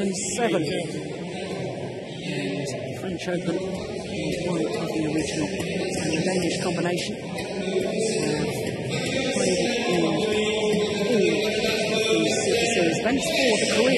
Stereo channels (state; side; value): identical; both; correlation 1.00